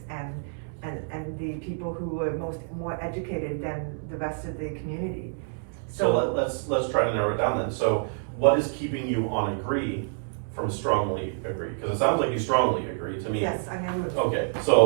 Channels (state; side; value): silent; left; 60 dB below the other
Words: and the people who were more educated than the rest of the community. So let's try to narrow it down then. So what is keeping you on agree from strongly agree? Because it sounds like you strongly agree to me. Yes, I am. Okay,